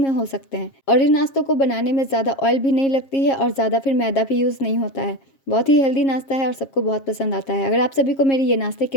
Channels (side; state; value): right; late; 7.4 ms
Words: हो सकते हैं। और इन नाश्तों को बनाने में ज़्यादा ऑयल भी नहीं लगती है और ज़्यादा फिर मैदा भी यूज़ नहीं होता है। बहुत ही हेल्दी नाश्ता है और सबको बहुत पसंद आता है। अगर आप सभी को मेरी ये नाश्ते की